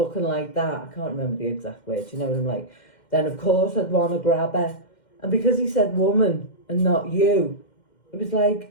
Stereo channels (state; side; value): late; right; 2.1 ms